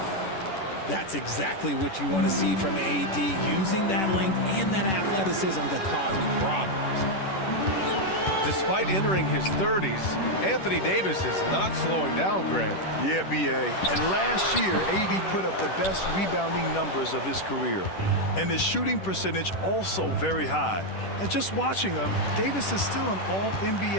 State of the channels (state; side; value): late; right; 10 ms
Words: That's exactly what you want to see from AD, using that length and that athleticism to cause problems. Despite entering his 30s, Anthony Davis is not slowing down, Grant. Yeah, B.A. And last year, AD put up the best rebounding numbers of his career. And his shooting percentage also very high. And just watching him, Davis is still an